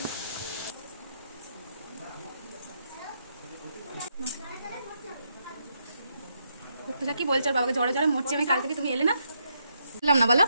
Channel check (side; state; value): both; inverted; correlation -0.78